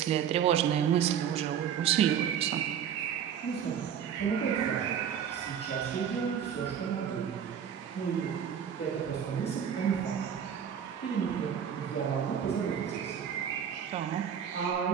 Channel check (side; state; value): left; quieter; 8.5 dB